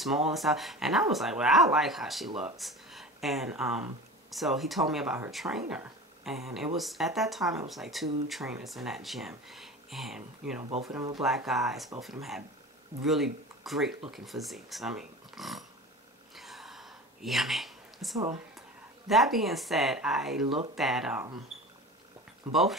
and stuff. And I was like, well, I like how she looks. And so he told me about her trainer. And it was, at that time, it was like 2 trainers in that gym. And, both of them were black guys. Both of them had really great looking physiques. I mean, yummy. So that being said, I looked at both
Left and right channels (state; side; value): normal; both; correlation 0.34